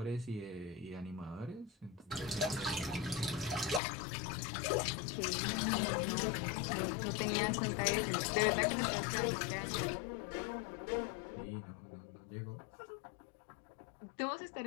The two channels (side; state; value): right; drops out; at 3.8 s